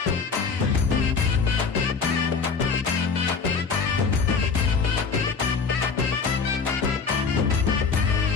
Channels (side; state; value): right; quieter; 5.2 dB